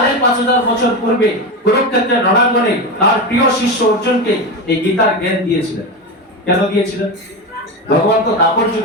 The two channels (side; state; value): both; normal; correlation 0.18